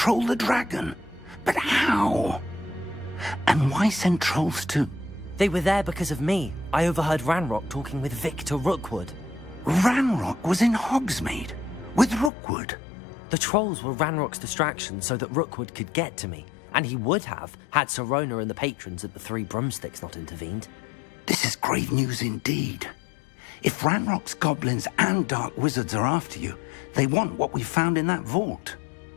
the dragon. But how? And why send trolls to... They were there because of me. I overheard Ranrock talking with Victor Rookwood. Ranrock was in Hogsmeade? With Rookwood? The trolls were Ranrock's distraction so that Rookwood could get to me. And he would have, had Sirona and the patrons at the Three Broomsticks not intervened. This is grave news indeed. If Ranrock's goblins and dark wizards are after you, they want what we found in that vault.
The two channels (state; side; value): drops out; right; at 12.3 s